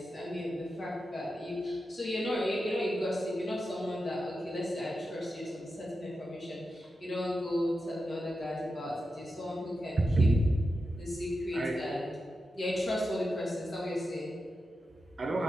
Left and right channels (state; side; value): normal; both; correlation 0.89